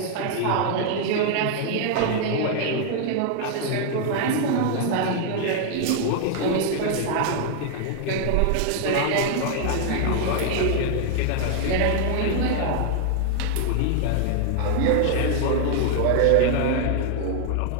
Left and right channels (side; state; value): both; different; correlation 0.00